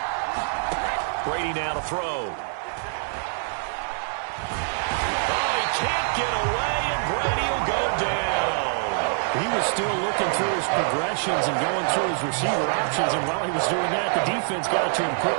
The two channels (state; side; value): silent; left; digital silence